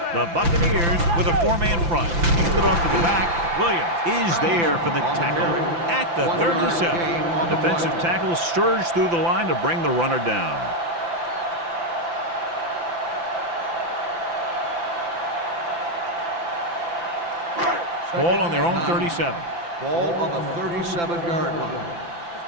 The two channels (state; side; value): late; left; 5.9 ms